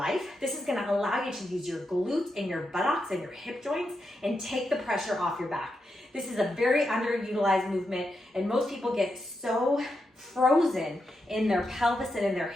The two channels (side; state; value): both; normal; correlation 0.85